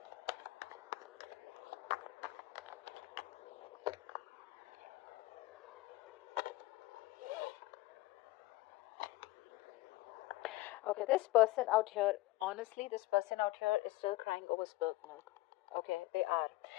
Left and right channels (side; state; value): right; quieter; 19.0 dB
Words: okay, this person out here, honestly, this person out here is still crying over spilled milk. Okay, they are.